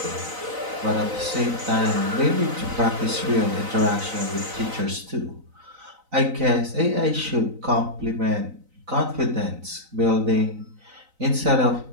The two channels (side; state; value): left; late; 3.9 ms